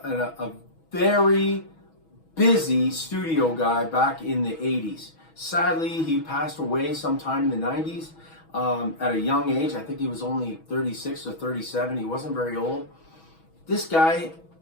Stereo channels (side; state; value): right; late; 6.2 ms